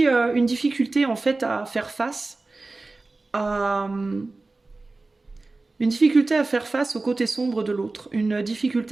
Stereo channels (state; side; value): quieter; left; 3.4 dB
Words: une difficulté en fait à faire face à... Une difficulté à faire face au côté sombre de l'autre, une